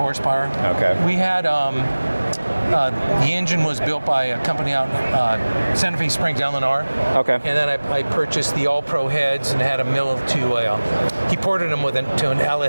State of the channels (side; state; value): both; inverted; correlation -1.00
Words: Okay. We had the engine was built by a company out in Santa Fe Springs, Illinois. Okay. And then I purchased the All-Pro heads and had them milled he ported them to an